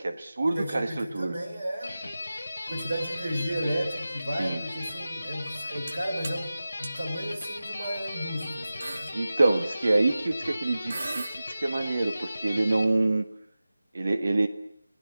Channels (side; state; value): both; inverted; correlation -0.95